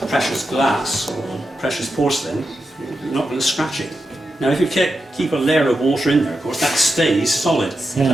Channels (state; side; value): normal; both; correlation 0.88